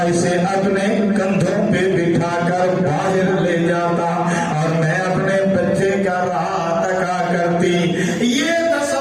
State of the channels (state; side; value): identical; both; correlation 1.00